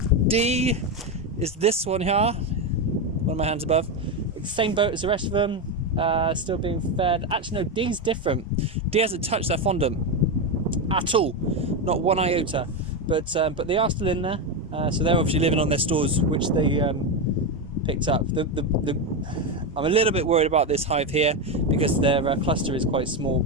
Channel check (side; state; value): both; normal; correlation 0.11